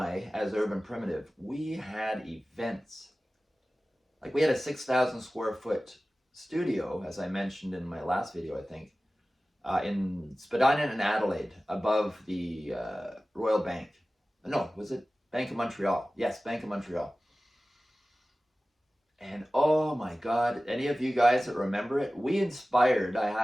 as Urban Primitive, we had events. Like we had a 6,000 square foot studio, as I mentioned in my last video, I think, in Spadina and Adelaide, above the Royal Bank. No, was it Bank of Montreal? Yes, Bank of Montreal. And oh my God, any of you guys that remember it, we inspired,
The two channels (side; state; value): both; normal; correlation 0.96